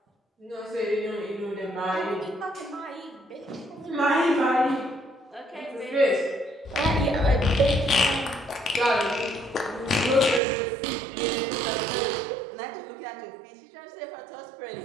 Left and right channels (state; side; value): drops out; left; at 10.4 s